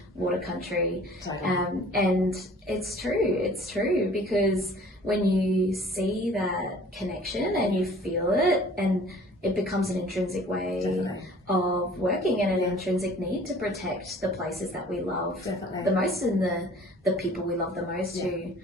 water country. And it's true because when you see that connection and you feel it, and it becomes an intrinsic way of working and an intrinsic need to protect the places that we love the most and the people we love the most who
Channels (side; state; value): both; normal; correlation 0.50